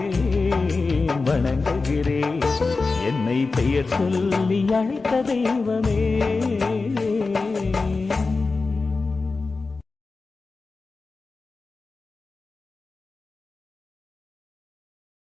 வணங்குகிறேன், என்னை பெயர் சொல்லி அழைத்த தெய்வமே.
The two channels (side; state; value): right; quieter; 4.0 dB